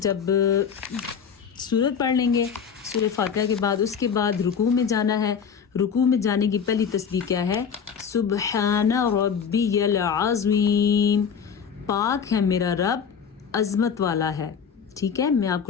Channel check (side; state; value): right; quieter; 6.9 dB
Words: جب سورت پڑھ لیں گے سورہ فاتحہ کے بعد، اس کے بعد رکوع میں جانا ہے۔ رکوع میں جانے کی پہلی تسبیح کیا ہے؟ سبحان ربی العظیم، پاک ہے میرا رب عظمت والا ہے۔ ٹھیک ہے، میں آپ